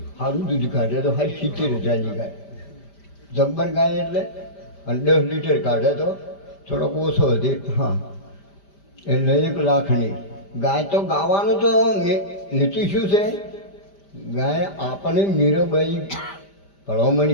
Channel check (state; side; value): late; right; 5.1 ms